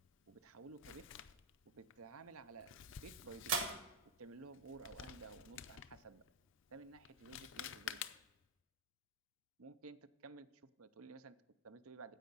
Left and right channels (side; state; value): both; normal; correlation -0.03